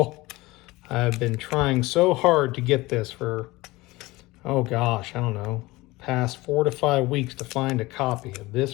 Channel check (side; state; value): right; quieter; 20.5 dB